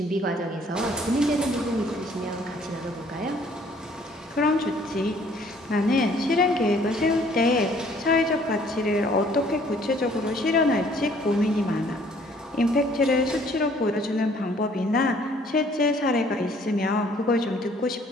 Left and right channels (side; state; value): both; normal; correlation 0.59